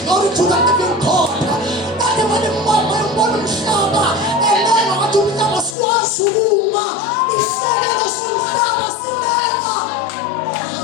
glory to the living God ade malimbona umhlaba elena wathi umhlaba swazi ukuma isakelo somhlaba silena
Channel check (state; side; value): drops out; right; at 5.8 s